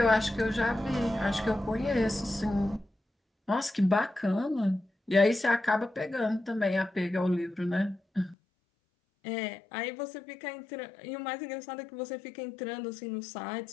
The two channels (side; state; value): right; drops out; at 8.3 s